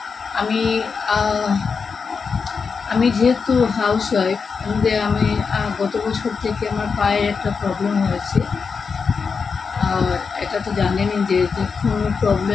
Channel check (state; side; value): quieter; right; 5.4 dB